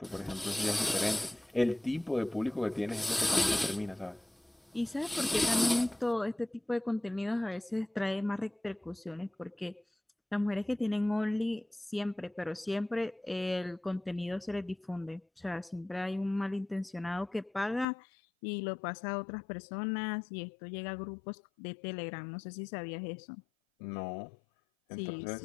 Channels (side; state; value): right; drops out; at 17.9 s